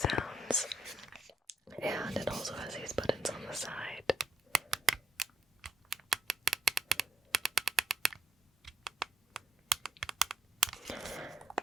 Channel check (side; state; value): both; normal; correlation 0.76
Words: And it also has these buttons on the side.